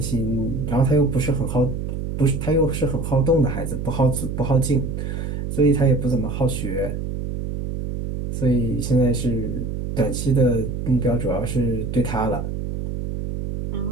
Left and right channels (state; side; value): noise; right; hum, 4 dB below the sound